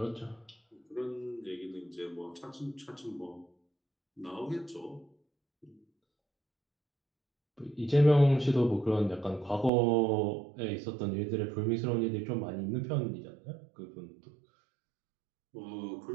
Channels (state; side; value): drops out; left; at 9.7 s